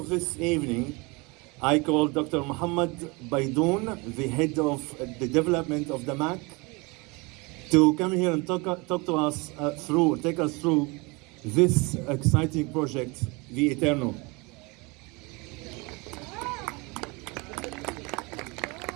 this evening, I call Dr. Muhammad Baidoun, the head of the development of the MAC, to come here and talk to us take us through this exciting project, the Eternal.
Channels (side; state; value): left; quieter; 26.9 dB